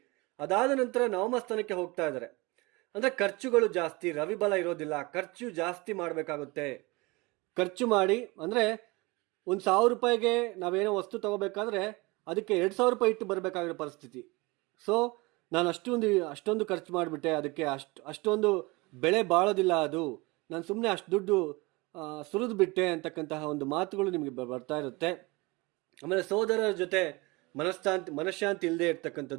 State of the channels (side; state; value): left; quieter; 24.5 dB